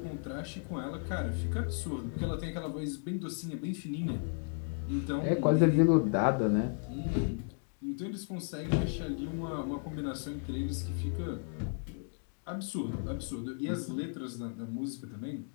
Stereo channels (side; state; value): right; silent; 55 dB below the other